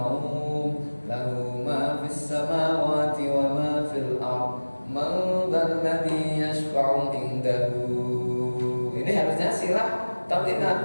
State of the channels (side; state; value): both; inverted; correlation -1.00